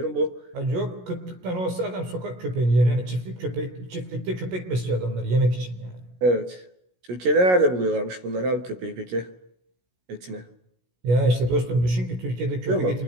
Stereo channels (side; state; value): left; late; 16 ms